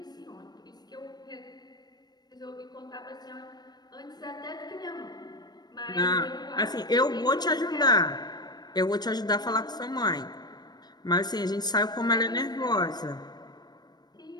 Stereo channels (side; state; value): right; late; 0.20 ms